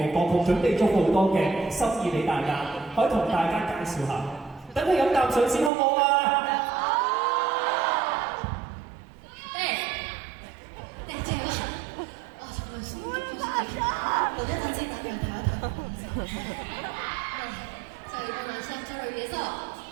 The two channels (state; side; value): drops out; left; at 5.7 s